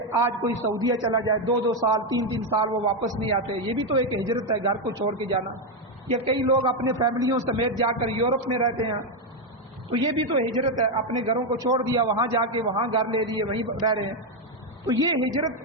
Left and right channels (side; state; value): both; normal; correlation 0.05